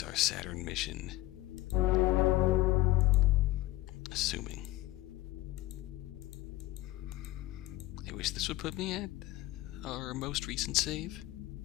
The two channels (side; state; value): right; quieter; 17.8 dB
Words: our Saturn mission. Assuming. I wish this would put me at our most recent save.